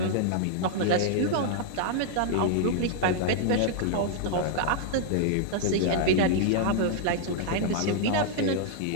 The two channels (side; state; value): both; different; correlation -0.01